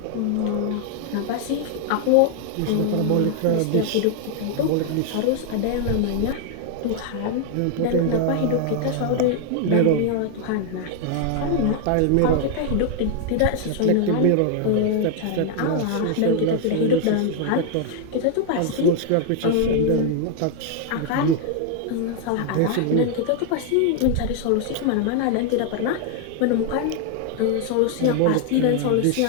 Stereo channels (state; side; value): different; both; correlation 0.00